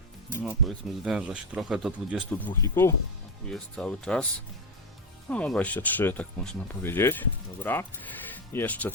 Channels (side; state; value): both; normal; correlation 0.11